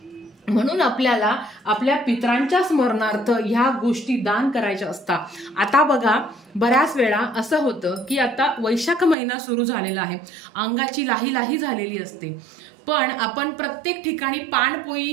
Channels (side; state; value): left; drops out; at 9.2 s